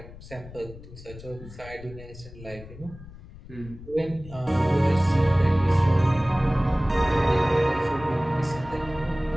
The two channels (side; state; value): left; noise; rumble, 17 dB below the sound